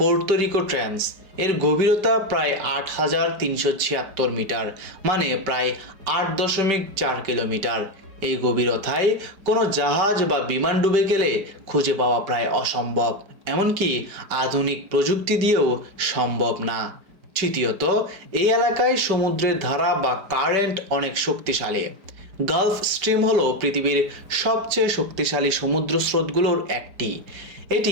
রিকো ট্রেন্চ। এর গভীরতা প্রায় 8,376 মিটার, মানে প্রায় 8.4 কিলোমিটার। এই গভীরতায় কোনো জাহাজ বা বিমান ডুবে গেলে খুঁজে পাওয়া প্রায় অসম্ভব, এমনকি আধুনিক প্রযুক্তি দিয়েও সম্ভব না। তৃতীয়ত, এই এলাকায় সমুদ্রের ধারা বা কারেন্ট অনেক শক্তিশালী। গালফ স্ট্রিম হলো পৃথিবীর সবচেয়ে শক্তিশালী সমুদ্র স্রোতগুলোর একটি।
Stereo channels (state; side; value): late; left; 4.9 ms